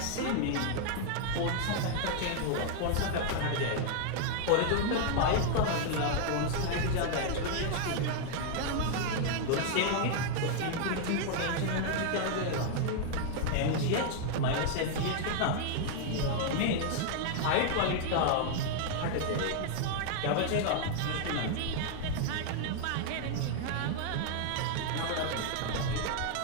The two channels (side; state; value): both; different; correlation 0.00